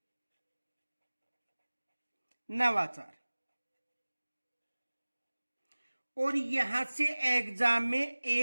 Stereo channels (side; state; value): both; inverted; correlation -1.00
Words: नवाचार। और यहां से एग्जाम में